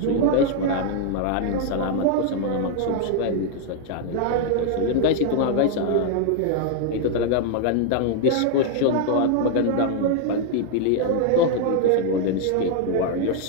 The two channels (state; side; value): different; both; correlation 0.00